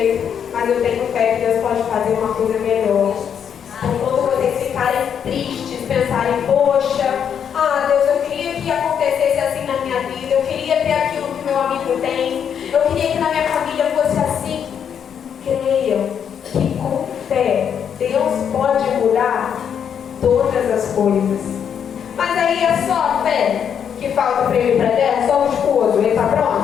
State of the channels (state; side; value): quieter; right; 8.1 dB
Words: Mas eu tenho fé que Deus pode fazer uma coisa melhor. Então, quando vocês ficarem tristes, pensarem, poxa, Deus, eu queria que acontecesse assim na minha vida, eu queria ter aquilo que meu amigo tem, eu queria que na minha família fosse assim. Creiam que com fé Deus pode mudar todas as coisas. Mas aí é só a fé que falta para ele ir para a terra? Só o esposo, ele está